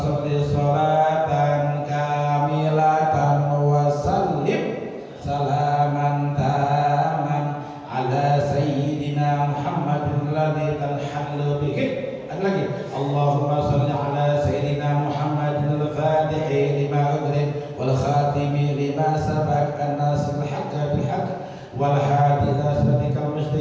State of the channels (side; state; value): both; identical; correlation 1.00